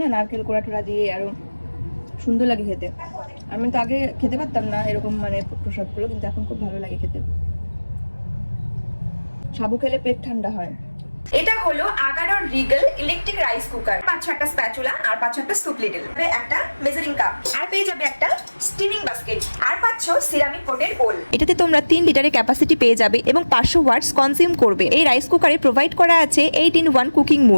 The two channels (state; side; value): inverted; both; correlation -1.00